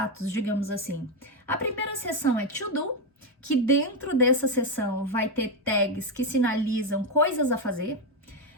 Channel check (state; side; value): normal; both; correlation 0.07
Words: digamos assim. A primeira seção é To Do, que dentro dessa seção vai ter tags que sinalizam coisas a fazer.